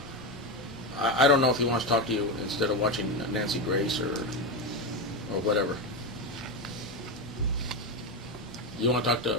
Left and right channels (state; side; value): normal; both; correlation 0.13